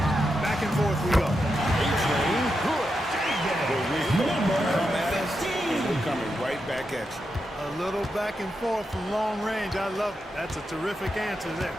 Back and forth we go. A-Train, good. Come at us, and we're coming right back at you. A little back and forth from long range. I love it. That's a terrific answer there.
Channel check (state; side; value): normal; both; correlation 0.86